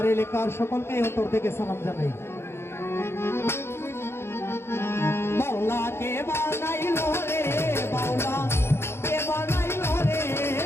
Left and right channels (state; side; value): late; right; 0.12 ms